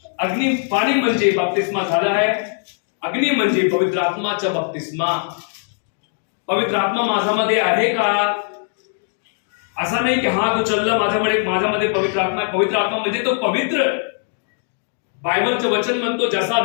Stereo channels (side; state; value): right; silent; 61 dB below the other